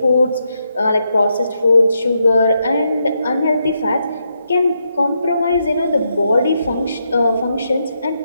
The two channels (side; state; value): both; inverted; correlation -0.81